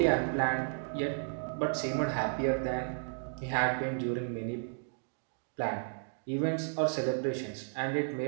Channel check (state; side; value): silent; left; digital silence